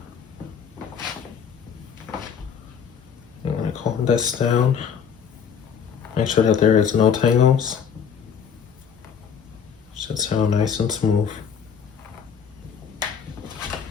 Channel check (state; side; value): quieter; right; 7.2 dB